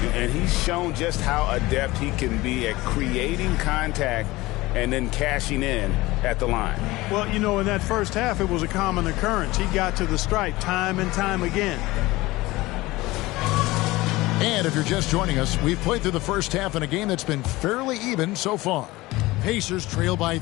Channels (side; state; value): right; quieter; 19.7 dB